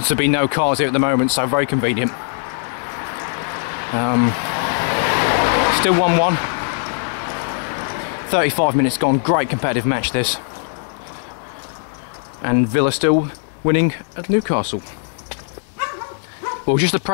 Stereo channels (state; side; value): silent; right; digital silence